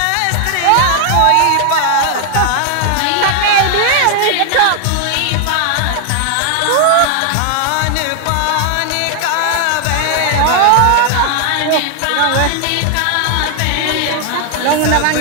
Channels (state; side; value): different; both; correlation 0.00